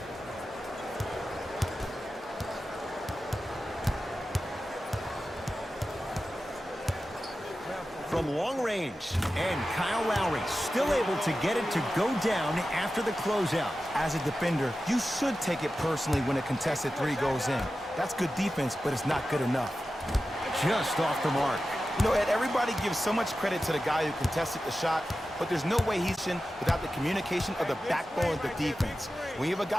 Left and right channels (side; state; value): both; normal; correlation 0.93